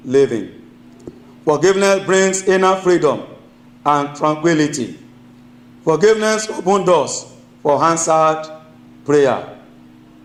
living. Forgiveness brings inner freedom and tranquility. Forgiveness opens doors for answered prayer.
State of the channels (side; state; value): both; identical; correlation 1.00